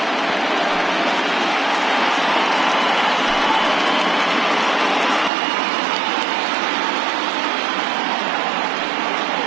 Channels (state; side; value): drops out; left; at 5.3 s